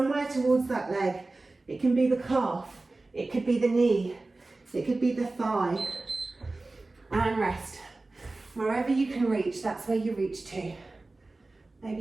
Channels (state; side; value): quieter; left; 3.2 dB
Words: towards that leg. It can be the calf, it could be the knee, it could be the thigh. And rest. Wherever you can reach, that's where you reach to.